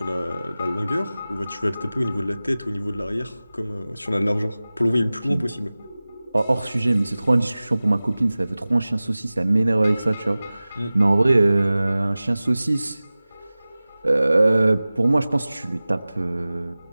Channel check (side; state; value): both; inverted; correlation -0.98